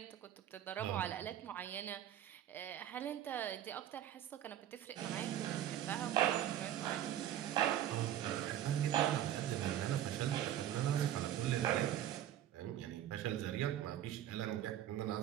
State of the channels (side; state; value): left; quieter; 11.5 dB